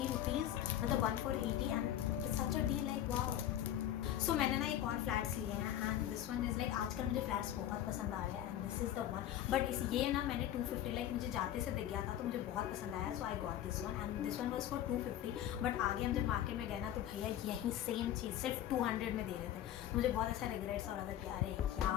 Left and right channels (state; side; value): quieter; right; 11.7 dB